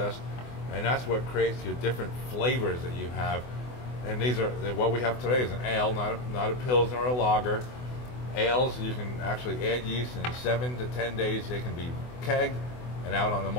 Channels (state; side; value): late; right; 24 ms